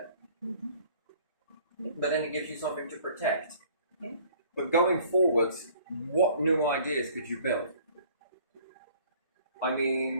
Mm-hmm. Yeah. But then it gives you something to protect. Yeah. But going forwards, what new ideas could you build? I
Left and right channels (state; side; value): inverted; both; correlation -0.54